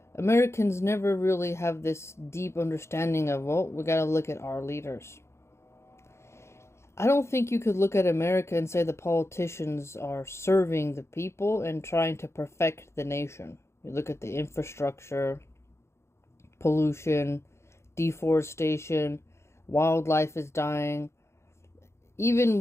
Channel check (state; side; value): late; right; 0.13 ms